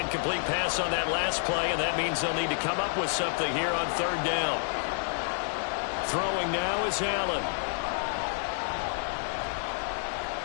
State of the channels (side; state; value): right; silent; digital silence